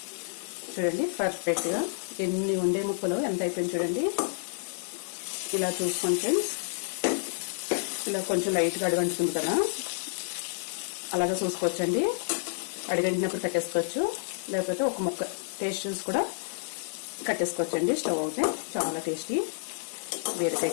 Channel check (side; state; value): right; silent; digital silence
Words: చూడండి పర్ఫెక్ట్గా ఎన్ని ఉండే ముక్కలు ఎంత అయిపోయింది చూడండి. ఇలా చూసుకోండి ఫ్రెండ్స్. ఇలా కొంచెం లైట్గా అడుగంటుతుంది కదా, అలాగా చూసుకోవచ్చండి. అడిగంటినప్పుడు కట్టేసుకోవచ్చు, లేకపోతే ఒక ముక్క టేస్ట్ చూసి కూడా కట్టేసుకోవచ్చండి. స్టవ్ అయితే చాలా టేస్టీ బీరకాయ